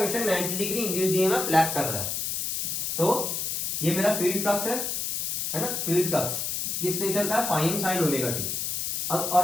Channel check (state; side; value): noise; left; hiss, 1 dB below the sound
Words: 90 डिग्री इंड्यूस्ड ईएमएफ लैग कर रहा है। तो ये मेरा फील्ड फ्लक्स है ना, फील्ड फ्लक्स किस नेचर का है, phi M sine omega T. अब